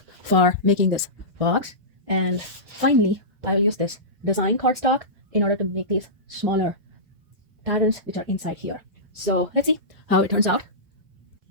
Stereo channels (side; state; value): left; late; 2.0 ms